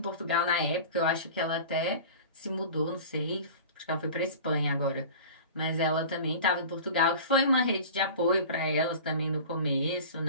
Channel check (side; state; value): both; inverted; correlation -0.37